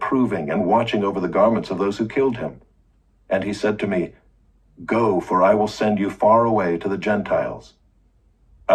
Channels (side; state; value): both; identical; correlation 1.00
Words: and watching over the garments of those who killed him. And he said to me, Go, for I will send you far away to the Gentiles.